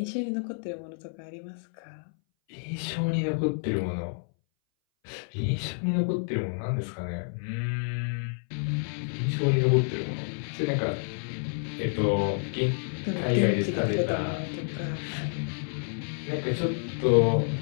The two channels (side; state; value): right; silent; 59 dB below the other